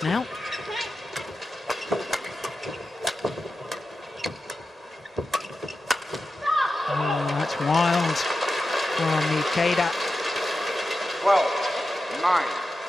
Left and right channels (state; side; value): normal; both; correlation 0.91